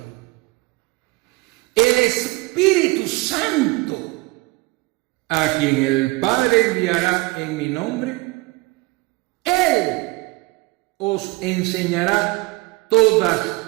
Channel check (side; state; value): left; quieter; 23.3 dB